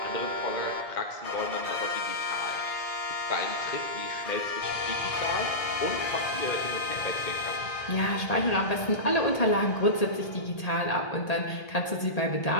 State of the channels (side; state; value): right; late; 1.8 ms